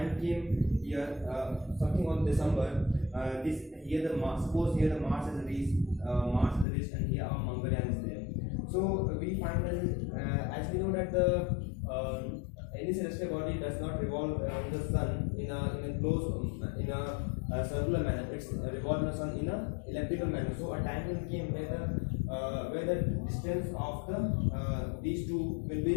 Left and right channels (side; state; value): right; drops out; at 6.7 s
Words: came here, something on December. Suppose here the Mars is reached, and here our Mangalyaan is there. So we find that as we know that any celestial body does not revolve around the sun in a circular manner. It's revolve the sun in a elliptical manner. So a time came where the distance of these two will